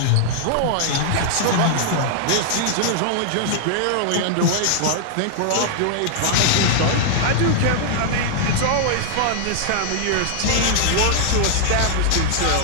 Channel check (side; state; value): both; different; correlation -0.01